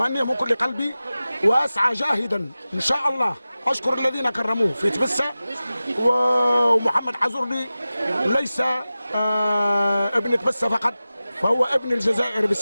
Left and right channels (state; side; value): inverted; both; correlation -0.96